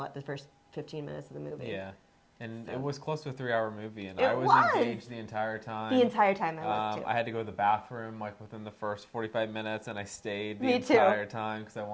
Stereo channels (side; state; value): both; identical; correlation 1.00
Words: first 15 minutes of the movie. Yeah, and it was close to a 3-hour movie, and It I was was. engaged the entire time. The entire time I was too. I had to go to the bathroom within the first 45 minutes, and I stayed the Me too. entire time because I